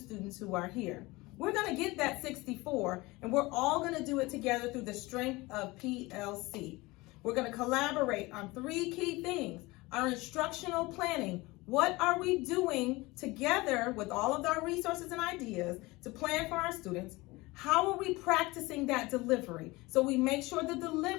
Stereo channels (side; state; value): right; quieter; 22.0 dB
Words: who are here. We're going to get that 64, and we're all going to do it together through the strength of PLC. We're going to collaborate on three key things. Our instructional planning. What are we doing together with all of our resources and ideas to plan for our students? How are we practicing that delivery so we make sure the